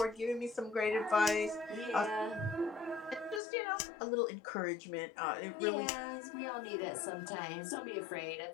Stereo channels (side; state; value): right; drops out; at 3.4 s